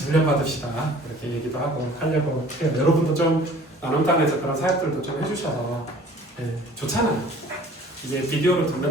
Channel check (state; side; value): normal; both; correlation 0.49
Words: 훈련 받읍시다 이렇게 얘기도 하고 하려고 해요. 여러분도 좀 나눔단에서 그런 사역들도 좀 해주셔서 네, 좋잖아요. 이게 비디오를 듣는